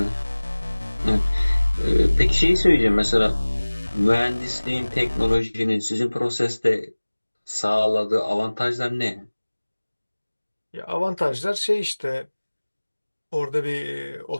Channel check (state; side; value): inverted; both; correlation -1.00